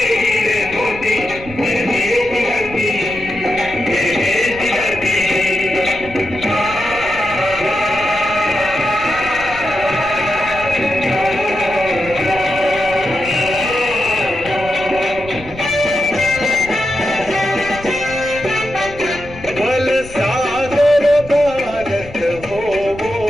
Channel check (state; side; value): noise; left; rumble, 16 dB below the sound